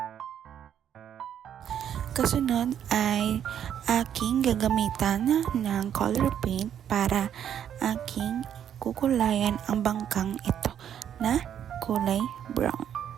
Kasunod ay aking gagamitan ng color paint para aking kukulayan ang bangkang ito na kulay brown.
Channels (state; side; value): quieter; left; 9.4 dB